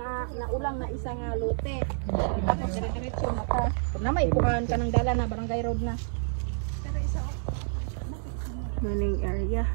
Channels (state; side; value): silent; left; 59 dB below the other